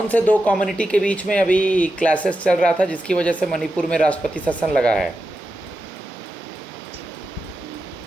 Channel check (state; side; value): normal; both; correlation 0.89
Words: से दो कम्युनिटी के बीच में अभी क्लासेस चल रहा था जिसकी वजह से मणिपुर में राष्ट्रपति शासन लगा है?